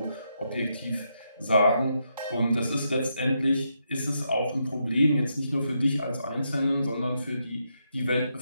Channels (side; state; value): both; inverted; correlation -0.81